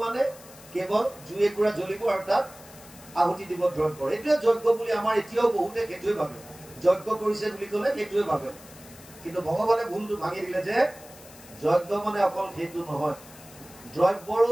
মানে কেৱল জুই একুৰা জ্বলিব আৰু তাত আহুতি দিব দ্ৰব্যৰ। এইটোৱে যজ্ঞ বুলি আমাৰ এতিয়াও বহুতে সেইটোৱে ভাবে, যজ্ঞ কৰিছে বুলি ক'লে সেইটোৱে ভাবে। কিন্তু ভগৱানে ভুলটো ভাঙি দিলে যে যজ্ঞ মানে অকল সেইটো নহয়, দ্ৰব্যৰো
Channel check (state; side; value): noise; left; hiss, 20 dB below the sound